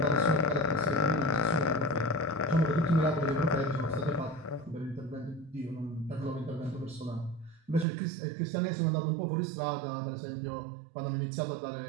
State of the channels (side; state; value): left; drops out; at 7.9 s